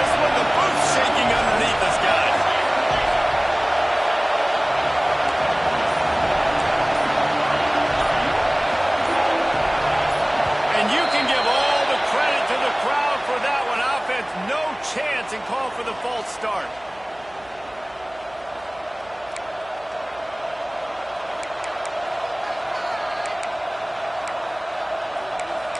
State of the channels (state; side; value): noise; right; hum, 26 dB below the sound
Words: And call for the false start.